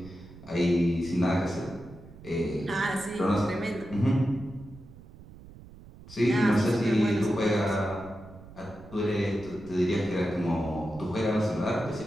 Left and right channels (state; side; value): noise; right; rumble, 19 dB below the sound